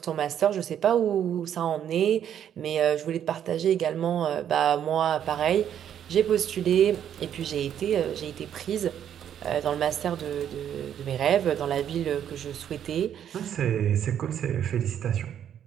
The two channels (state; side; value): quieter; left; 9.6 dB